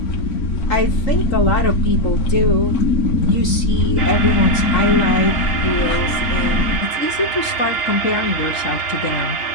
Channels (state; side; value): late; right; 3.8 ms